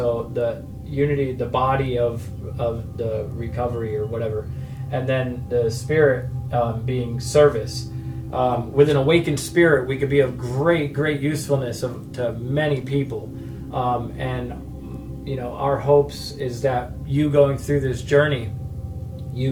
the unity, the body of the recovery or whatever, and then the spirit being service. With an awakened spirit, we could be of great usefulness to many people. And our hopes is that you going through this journey, you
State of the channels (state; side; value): identical; both; correlation 1.00